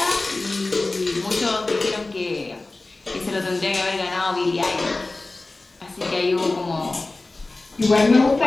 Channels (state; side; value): quieter; right; 3.2 dB